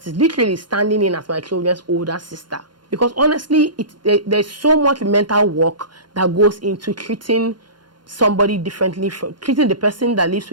is literally standing in as my children's older sister. Because honestly, there's so much mental work that goes into treating somebody differently, treating the person that lives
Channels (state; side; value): late; left; 0.71 ms